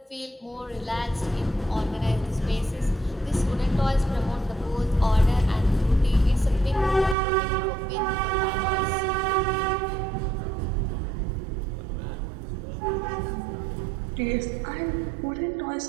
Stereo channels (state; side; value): drops out; left; at 7.2 s